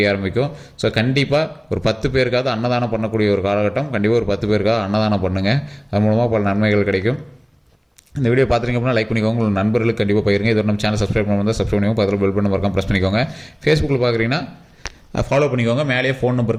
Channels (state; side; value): identical; both; correlation 1.00